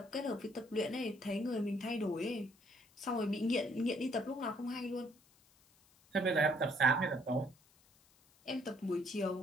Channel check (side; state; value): left; noise; hiss, 30 dB below the sound